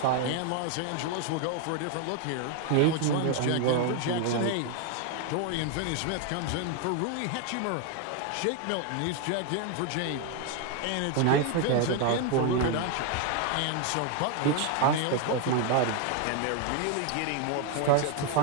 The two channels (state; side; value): different; both; correlation 0.01